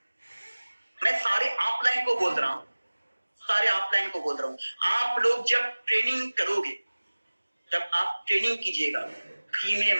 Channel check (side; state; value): both; inverted; correlation -1.00